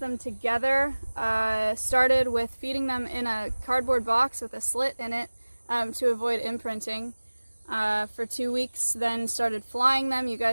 them together, started with feeding them in a cardboard box with a slit in it to avoid imprinting for 2 weeks, then started flying them. You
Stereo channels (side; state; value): both; inverted; correlation -1.00